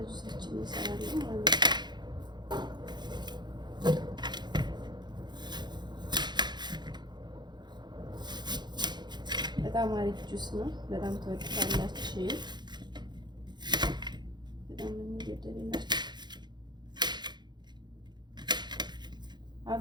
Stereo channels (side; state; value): left; late; 0.21 ms